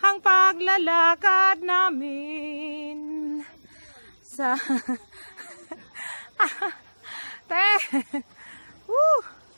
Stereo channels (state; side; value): inverted; both; correlation -1.00